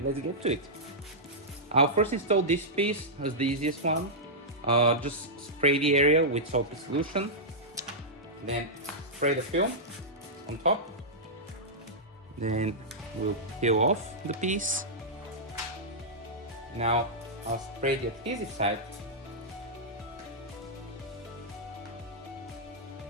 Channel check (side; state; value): both; normal; correlation -0.10